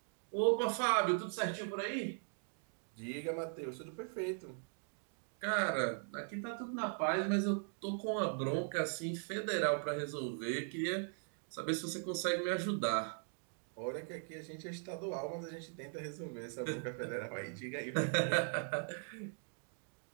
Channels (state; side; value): silent; left; 51 dB below the other